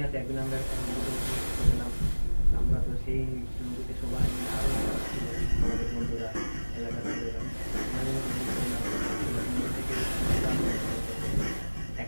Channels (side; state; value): both; inverted; correlation -1.00